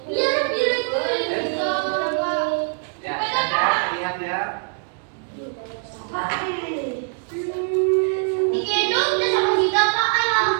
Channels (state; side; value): silent; left; 57 dB below the other